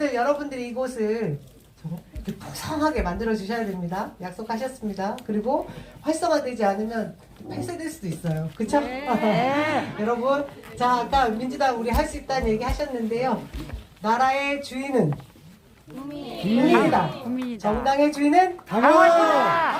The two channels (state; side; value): identical; both; correlation 1.00